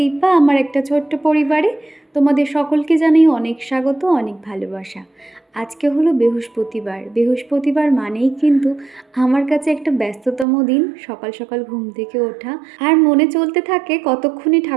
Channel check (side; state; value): left; drops out; at 10.5 s